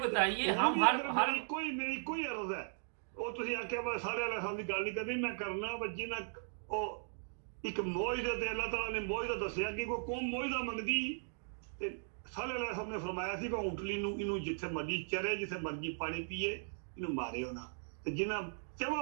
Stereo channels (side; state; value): left; silent; digital silence